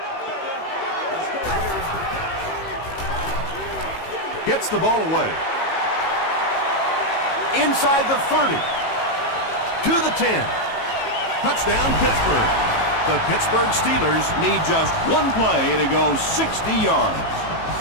Gets the ball away. Inside the 30. To the 10. Touchdown, Pittsburgh. The Pittsburgh Steelers need just one play to go 60 yards.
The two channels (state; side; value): late; right; 18 ms